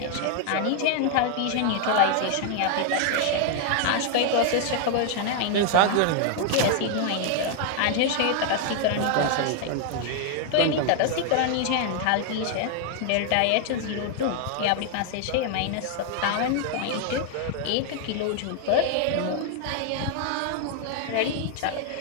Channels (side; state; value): both; different; correlation 0.00